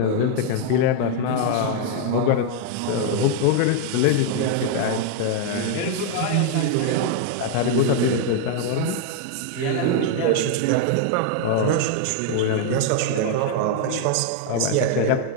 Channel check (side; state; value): both; different; correlation 0.00